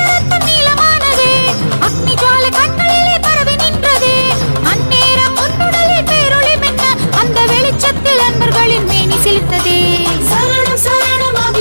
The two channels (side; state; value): both; inverted; correlation -1.00